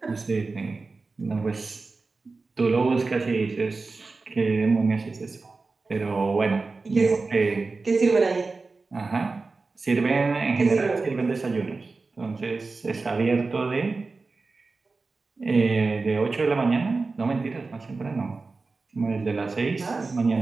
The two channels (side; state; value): left; quieter; 3.9 dB